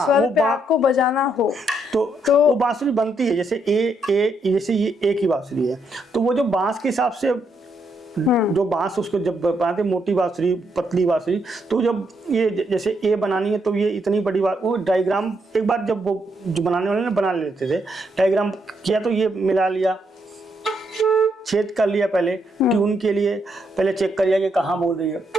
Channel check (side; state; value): both; normal; correlation 0.76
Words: पे आपको बजाना हो तो वो बांसुरी बनती है जैसे जैसे ये ए की बांसुरी है, तो वो जो बांस के हिसाब से जो बांस उसको जब बनाते मोटी बांसुरी, पतली बांसुरी, तो जब ये जैसे ए बनानी है तो ये इतनी बड़ी बात, वो डायग्राम एक बार जब वो जो बनाने वाले ने बना लेते थे, डायग्राम किया तो ये मिला लिया, छेद कर लिया, पहले ट्यून के लिए पहले चेक कर लिया कि कहाँ बोल रही है,